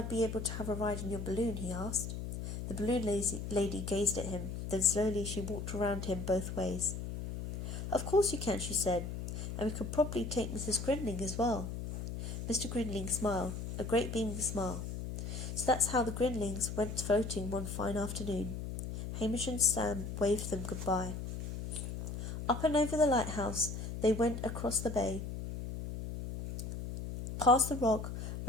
be able to have a ride in your balloon?" he asked. The balloon lady gazed at him. Then slowly she walked around him both ways. "Of course you can," she said, "and we could probably take Mrs. Grinling as well." Mr. Grinling smiled, a great beaming smile. So that's how the Grinlings went floating one fine afternoon. Hamish and Sam waved them goodbye. Up and over the lighthouse they went across the bay, past the rock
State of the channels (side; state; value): left; noise; hum, 6 dB below the sound